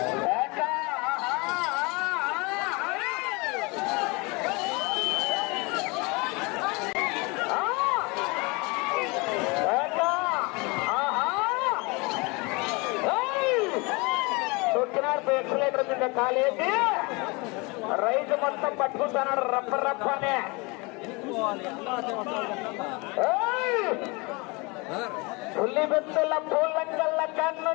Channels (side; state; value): right; quieter; 27.4 dB